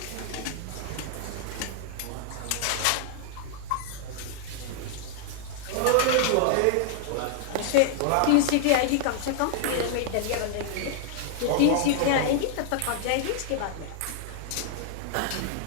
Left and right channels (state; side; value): different; both; correlation -0.01